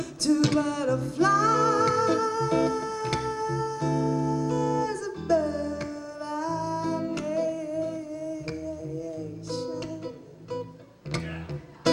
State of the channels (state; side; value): identical; both; correlation 1.00